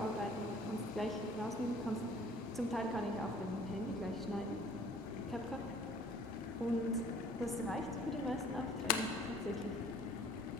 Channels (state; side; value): normal; both; correlation 0.54